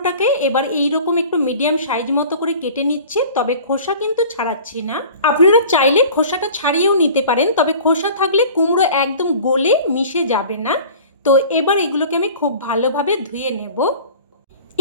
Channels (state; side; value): inverted; both; correlation -0.43